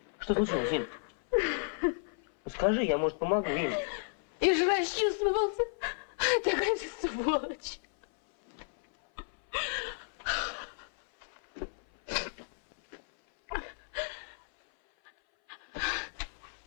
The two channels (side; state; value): right; silent; 56 dB below the other